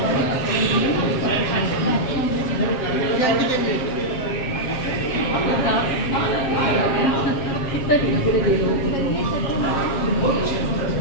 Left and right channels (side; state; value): right; late; 7.4 ms